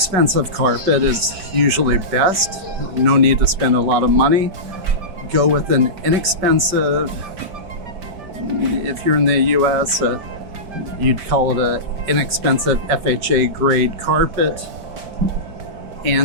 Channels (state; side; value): late; left; 5.2 ms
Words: carpet is usually best. No need to spend a lot of money. Go with an inexpensive, if you're in the US, you'd call it an inexpensive FHA grade carpet.